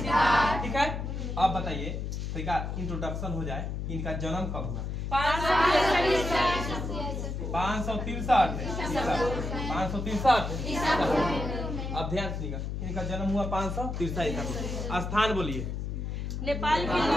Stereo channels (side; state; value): left; noise; hum, 4 dB below the sound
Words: ठीक है, अब बताइए तो इनका इंट्रोडक्शन हो जाए। इनका जन्म कब हुआ? 563। अब ध्यान सुनिएगा, इनका जन्म हुआ 563। स्थान बोलिए। नेपाल की